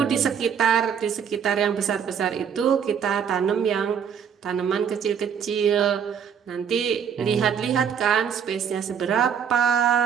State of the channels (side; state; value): left; quieter; 7.6 dB